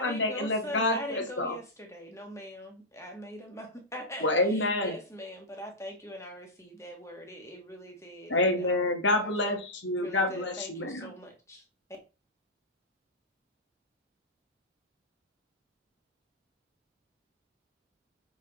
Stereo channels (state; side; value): normal; both; correlation -0.10